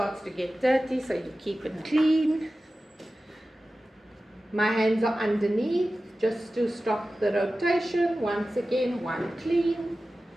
to get dirty, so you keep it clean. My hands are underneath just to stop the rotation. Once again, one clean.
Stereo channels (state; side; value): normal; both; correlation 0.95